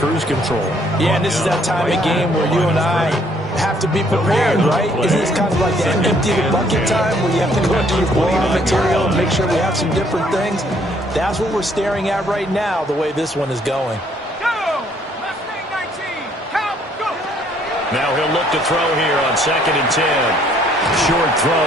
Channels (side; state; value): both; normal; correlation 0.65